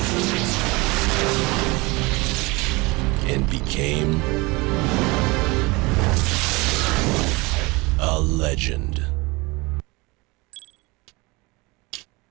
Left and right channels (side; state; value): left; quieter; 24.6 dB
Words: and became a legend.